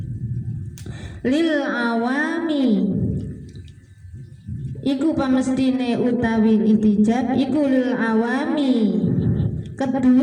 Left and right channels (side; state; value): both; identical; correlation 1.00